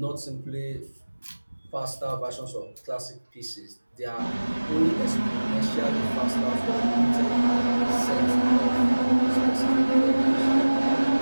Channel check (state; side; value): inverted; both; correlation -1.00